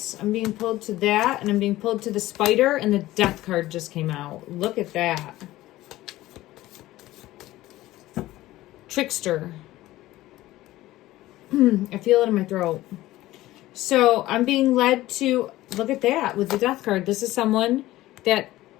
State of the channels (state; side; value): quieter; right; 16.5 dB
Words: I'm being pulled to that, and I'm being pulled to the spider, and the death card just came out. Look at that. Trickster. I feel it in my throat. So I'm being led to, look at that with the death card. This is someone that